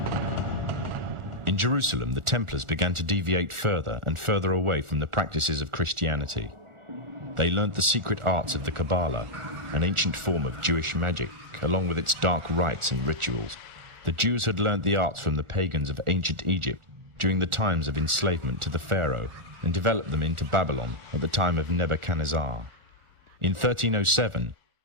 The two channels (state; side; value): late; left; 1.4 ms